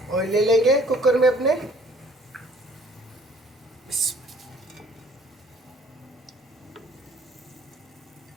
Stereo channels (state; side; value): normal; both; correlation 0.56